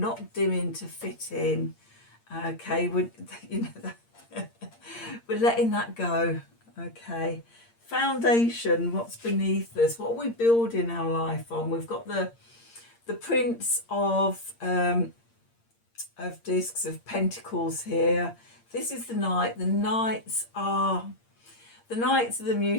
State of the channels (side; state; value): right; late; 8.7 ms